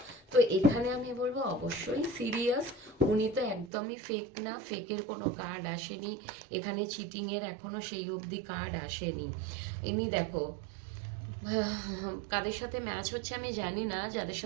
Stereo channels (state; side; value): drops out; left; at 3.7 s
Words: তো এখানে আমি বলবো অবশ্যই সিরিয়াস। উনি তো একদমই ফেক না, ফেকের কোনো কার্ড আসেনি এখানে, চিটিং এর এখনো সেই অবধি কার্ড আসেনি। এমনি দেখো, কাদের সাথে ম্যাচ হচ্ছে আমি জানি না, যাদের